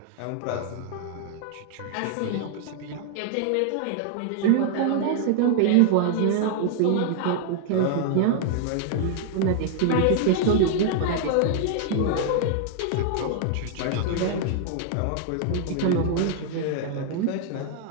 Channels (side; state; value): both; different; correlation 0.00